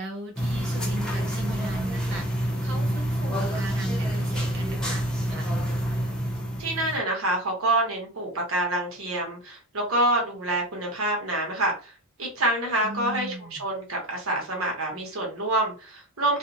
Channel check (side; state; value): both; normal; correlation 0.34